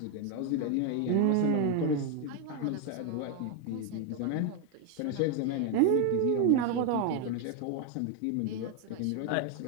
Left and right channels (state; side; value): different; both; correlation 0.01